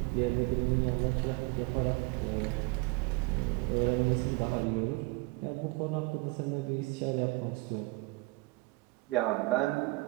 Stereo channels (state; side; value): quieter; left; 24.6 dB